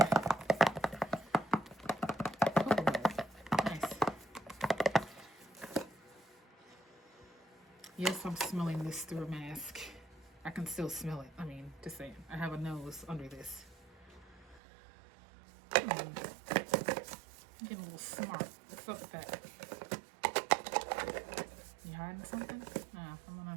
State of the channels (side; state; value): left; drops out; at 14.6 s